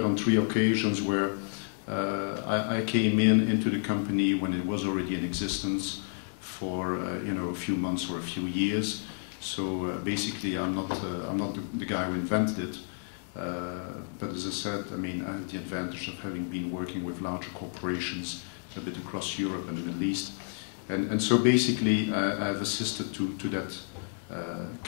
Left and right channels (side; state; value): right; silent; digital silence